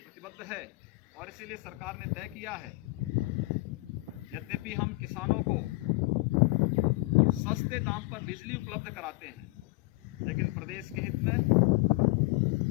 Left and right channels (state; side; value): quieter; right; 22.9 dB